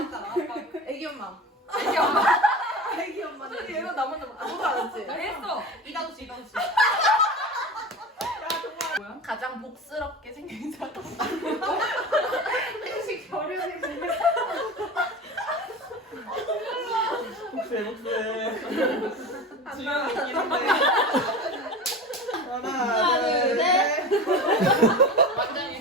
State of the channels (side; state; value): both; normal; correlation 0.31